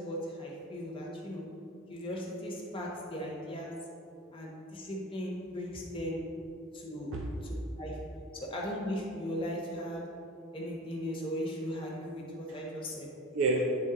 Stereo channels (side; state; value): both; normal; correlation 0.35